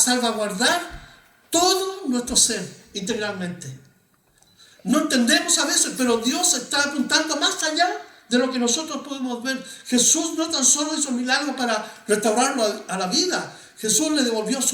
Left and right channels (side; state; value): both; identical; correlation 1.00